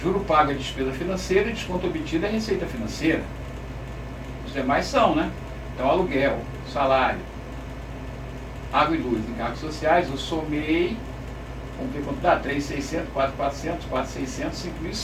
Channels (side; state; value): both; identical; correlation 1.00